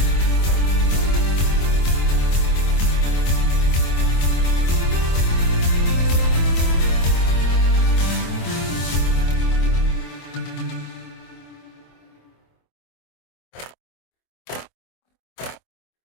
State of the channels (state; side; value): late; right; 24 ms